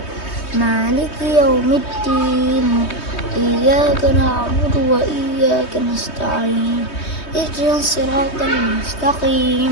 مالك يوم الدين إياك نعبد وإياك نستعين اهدنا الصراط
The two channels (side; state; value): right; late; 3.2 ms